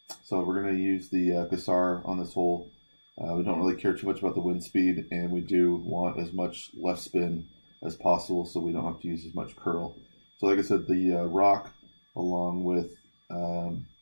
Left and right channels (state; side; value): inverted; both; correlation -1.00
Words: so we're going to use the Cassar on this hole. We don't really care too much about the wind speed, and we do want as much left spin as possible so we don't have to use as much curl. So, like I said, the rock along with